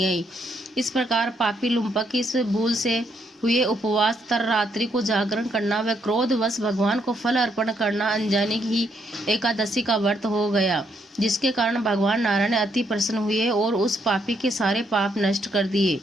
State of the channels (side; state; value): both; normal; correlation 0.74